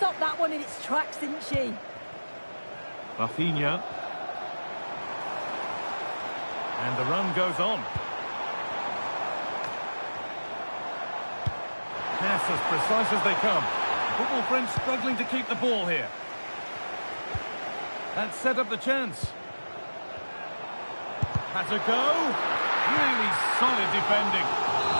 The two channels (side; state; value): both; inverted; correlation -1.00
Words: that one in its tracks, didn't she? Rafinha. And the run goes on. Pass as precise as they come. Football French struggling to keep the ball here. That set up the chance. Had to go. Really solid defending.